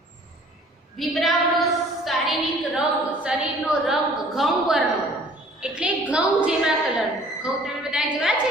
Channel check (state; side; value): normal; both; correlation 0.53